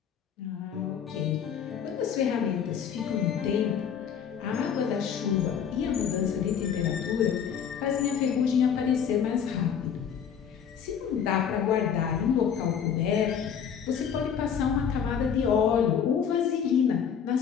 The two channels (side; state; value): right; quieter; 7.8 dB